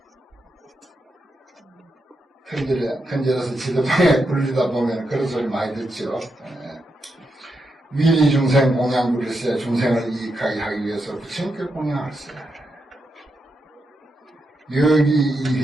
큰절에서 지도방에 굴리다 보면 그런 소리 많이 듣죠. 위리 중생 공양 부를세. 중생을 이익하게 하기 위해서 부처님께 공양할세. 여기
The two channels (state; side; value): normal; both; correlation 0.85